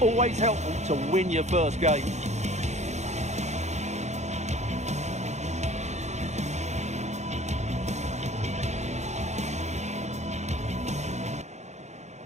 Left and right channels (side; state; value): left; late; 0.33 ms